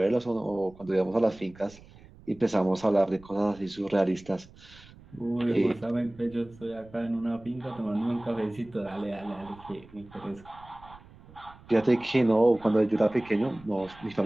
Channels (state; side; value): noise; right; rumble, 22 dB below the sound